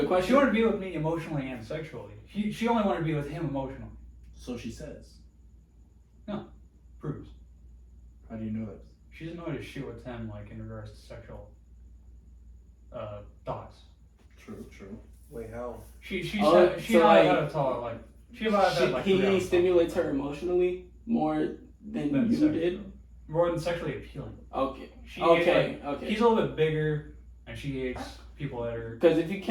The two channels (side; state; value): both; identical; correlation 1.00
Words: good question. She wanted to be with me emotionally and sexually. She only wanted to be with him emotionally. So she says. Proves. How do you know that? She doesn't know how to shoot with him like in regards to sexual thoughts. True. Wait, how? She Oh, said she so knows like- how to tell like She about had like 3 he hours. stimulates her emotionally more than Than you sexually. did. More than sexually appealing. Okay. She Okay. He's a little bit bigger, and she hates people that are. Because if you